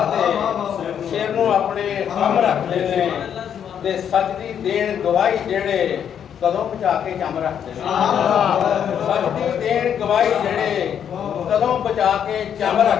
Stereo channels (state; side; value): quieter; right; 8.7 dB